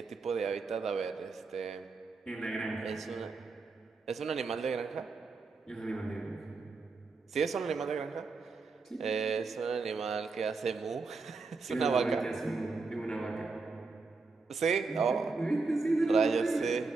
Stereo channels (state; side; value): quieter; left; 4.1 dB